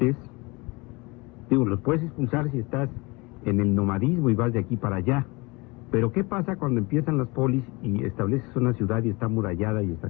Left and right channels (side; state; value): right; quieter; 25.5 dB